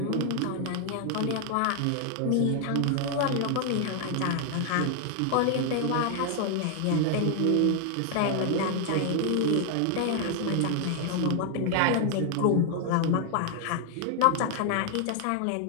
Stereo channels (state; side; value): different; both; correlation 0.00